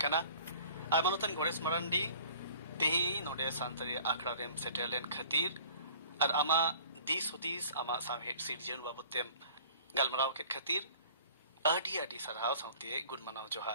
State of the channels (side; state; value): both; inverted; correlation -0.48